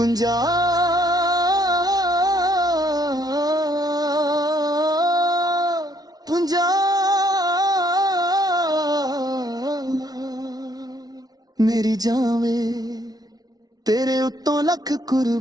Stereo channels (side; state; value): left; late; 0.19 ms